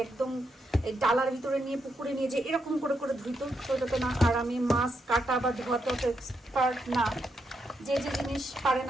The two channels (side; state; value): both; normal; correlation 0.81